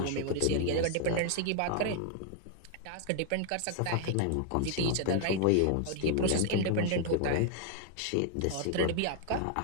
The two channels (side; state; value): both; different; correlation 0.00